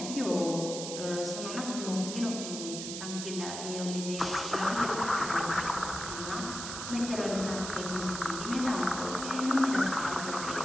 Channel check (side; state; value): right; noise; hiss, 6 dB below the sound